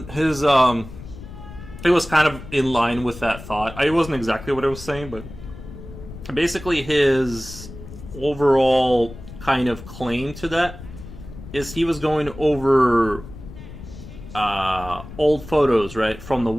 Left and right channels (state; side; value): noise; left; rumble, 14 dB below the sound